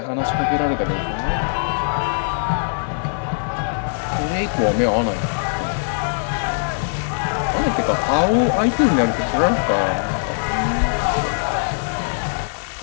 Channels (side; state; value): right; silent; digital silence